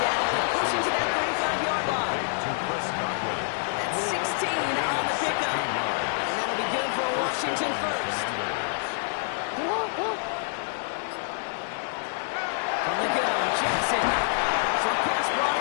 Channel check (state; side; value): silent; right; digital silence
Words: and pushing to that 35-yard line. That's 16 on the pickup. And that'll be good for Washington first. From the gun, Jackson. Short pass